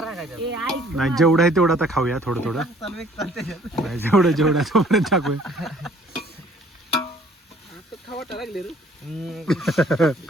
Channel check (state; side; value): normal; both; correlation 0.57